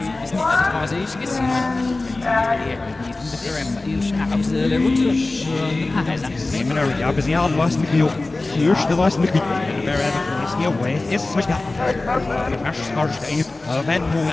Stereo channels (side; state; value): right; quieter; 3.1 dB